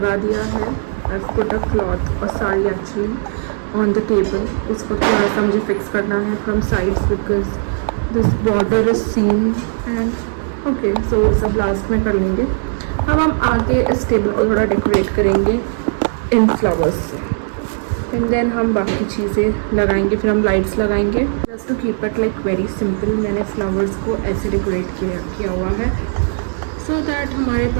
दिया है, आई पुट अ क्लॉथ और sari actually on the table. इसको थोड़ा सा मुझे फिक्स करना है from sides because this border is seen and okay, so सब लास्ट में कर लेंगे। अब हम आगे इस टेबल को थोड़ा डेकोरेट करेंगे इन फ्लावर्स से एंड देन हम बाकी चीज़ें लगाएंगे, फिर हम लाइट्स लगाएंगे। Just to keep it like very simple मैंने फ्लावर्स को ऐसे डेकोरेट किया हुआ है। सो दैट हमारे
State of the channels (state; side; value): silent; left; digital silence